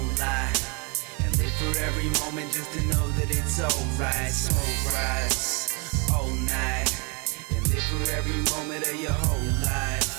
lie. And live for every moment just to know that it's alright. Smoke rise all night and live for every moment of your whole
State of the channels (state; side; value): quieter; left; 32.0 dB